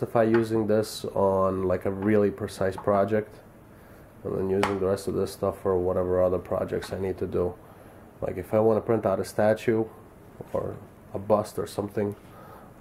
using this on like a really precise project, and then using the rest of this stuff for whatever other projects I need to do. Like if I want to print out a statue or a bust or something,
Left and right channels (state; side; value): identical; both; correlation 1.00